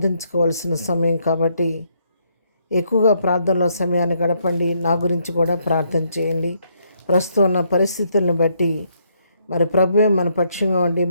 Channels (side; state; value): both; inverted; correlation -0.73